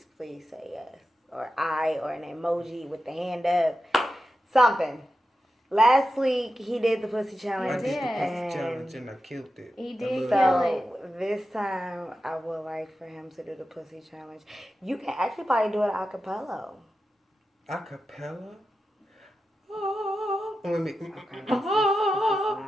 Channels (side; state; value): both; normal; correlation 0.91